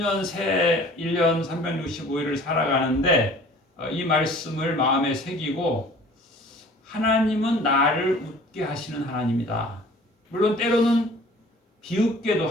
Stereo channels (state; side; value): normal; both; correlation 0.49